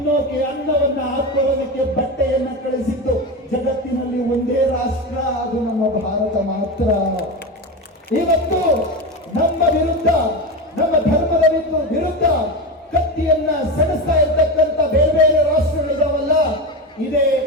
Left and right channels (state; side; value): normal; both; correlation 0.20